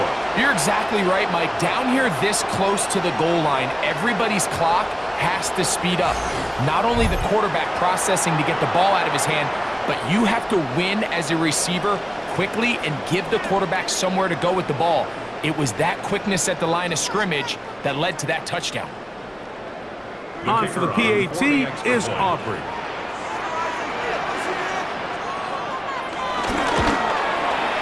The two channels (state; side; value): identical; both; correlation 1.00